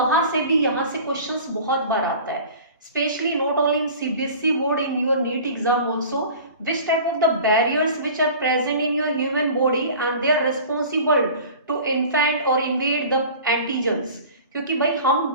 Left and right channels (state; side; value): inverted; both; correlation -0.41